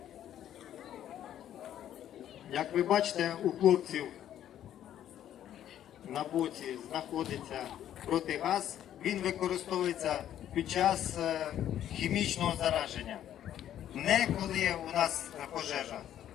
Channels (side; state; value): right; quieter; 11.1 dB